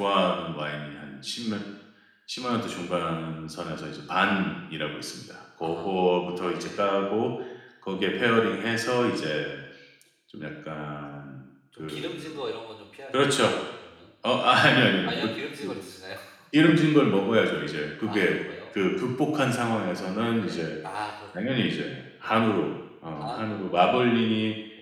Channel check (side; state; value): both; identical; correlation 1.00